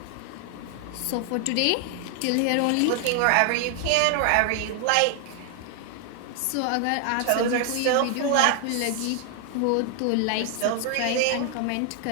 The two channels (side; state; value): both; different; correlation 0.00